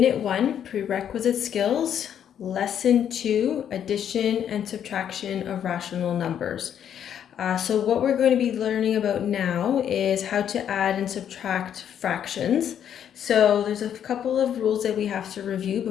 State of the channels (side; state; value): right; quieter; 9.3 dB